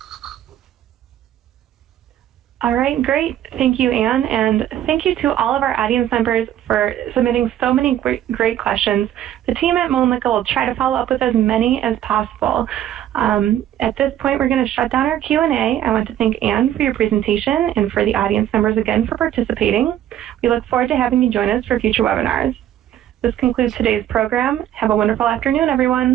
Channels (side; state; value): left; quieter; 11.6 dB